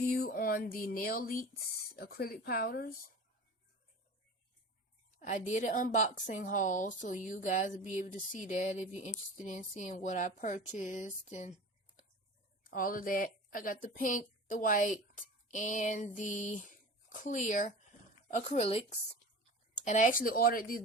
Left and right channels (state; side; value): normal; both; correlation 0.36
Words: on the Nail Leaks acrylic powders. I did an unboxing haul, so you guys will be able to see that if you're interested in seeing what I purchased and all of that. I got the pink, the white, and the clear acrylics. And I actually ordered these.